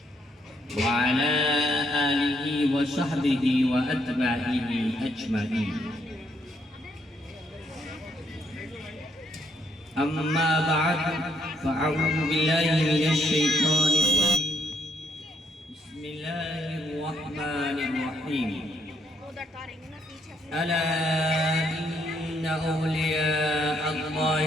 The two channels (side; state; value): both; normal; correlation 0.72